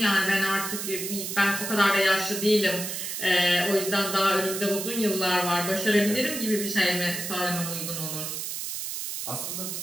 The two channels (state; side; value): noise; right; hiss, 5 dB below the sound